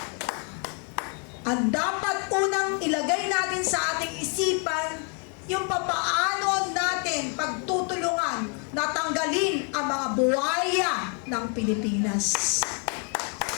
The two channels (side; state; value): right; quieter; 39.5 dB